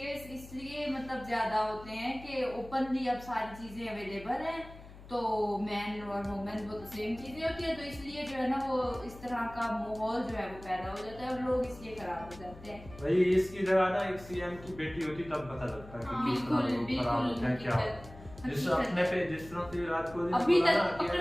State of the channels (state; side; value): noise; left; hum, 17 dB below the sound